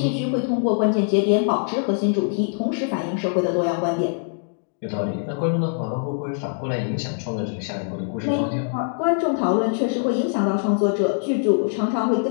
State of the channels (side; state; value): right; silent; digital silence